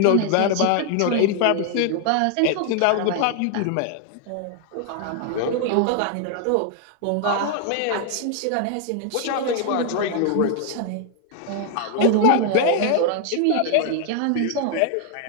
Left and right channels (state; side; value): different; both; correlation 0.00